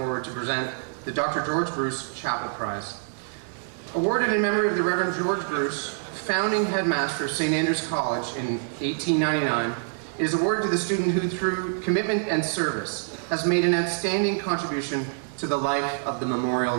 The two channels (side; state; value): left; silent; 61 dB below the other